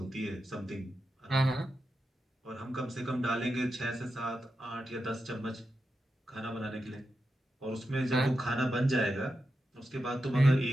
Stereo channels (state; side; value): normal; both; correlation 0.88